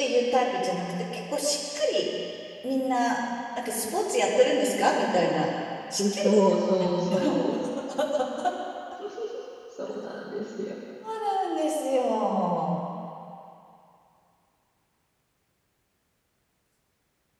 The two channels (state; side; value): identical; both; correlation 1.00